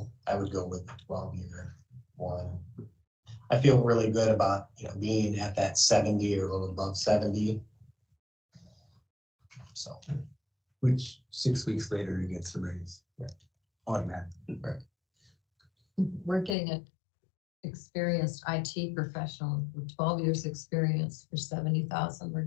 I would go with the 12-year one. I feel really good about, being at that 70 or a little above 70. So, Which 6 weeks later he gets the raise. Automatic. We're getting an experienced IT professional with 12 years experience for 70,000. We're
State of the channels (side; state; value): right; drops out; at 16.6 s